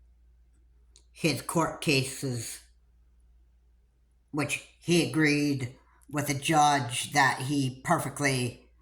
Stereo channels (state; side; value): identical; both; correlation 1.00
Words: his court cases, which he agreed with a judge that he perfectly